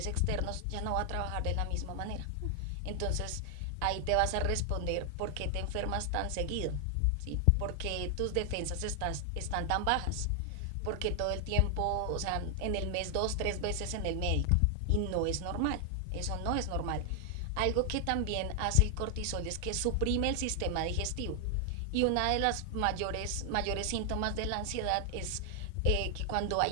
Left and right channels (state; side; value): different; both; correlation 0.00